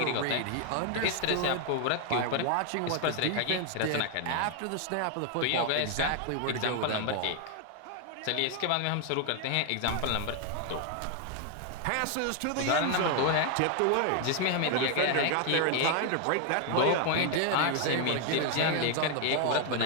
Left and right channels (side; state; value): both; different; correlation 0.01